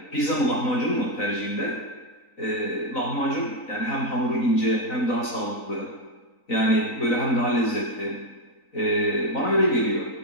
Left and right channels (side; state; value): right; late; 3.9 ms